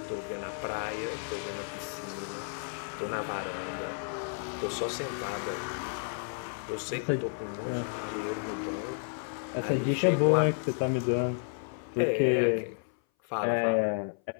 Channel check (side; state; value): right; silent; 57 dB below the other